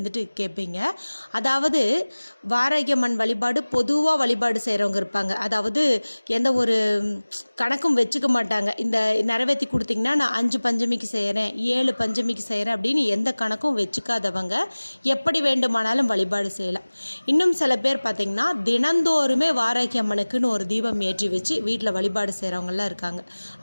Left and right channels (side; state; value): both; inverted; correlation -1.00